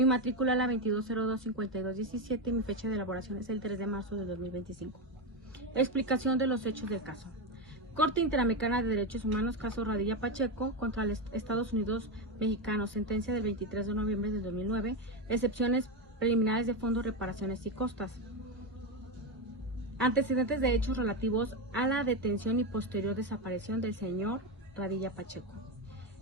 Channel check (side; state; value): both; normal; correlation 0.12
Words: matrícula es la 2202-5217 y mi fecha de elaboración es el 3 de marzo de 2025. Explicación de los hechos del caso. Corte Interamericana de Derechos Humanos, caso Radilla Pacheco contra los Estados Unidos mexicanos, sentencia del 23 de noviembre del 2009, excepciones preliminares de fondos, reparaciones y costas. Antecedentes de hechos relativos a la detención y posterior desaparición del señor Radilla Pacheco.